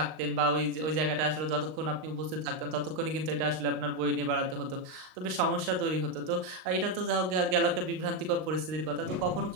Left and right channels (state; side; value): late; left; 38 ms